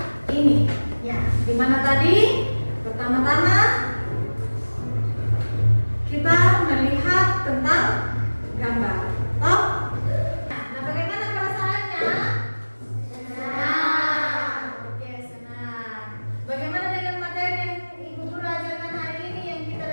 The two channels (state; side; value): inverted; both; correlation -1.00